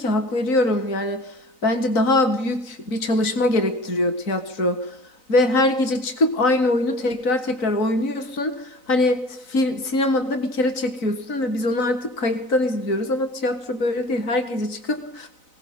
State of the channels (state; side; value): late; right; 3.9 ms